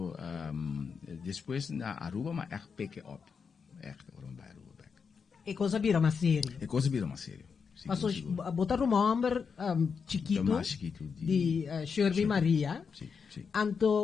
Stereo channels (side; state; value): right; quieter; 5.9 dB